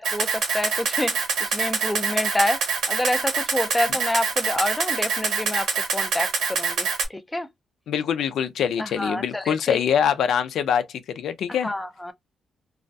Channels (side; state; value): both; normal; correlation 0.73